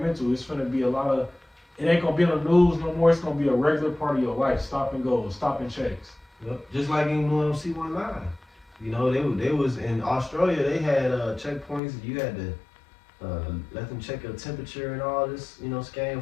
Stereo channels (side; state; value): right; drops out; at 11.8 s